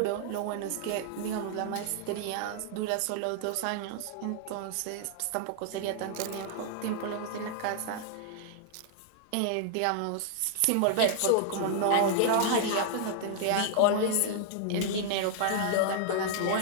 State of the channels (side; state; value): both; different; correlation -0.01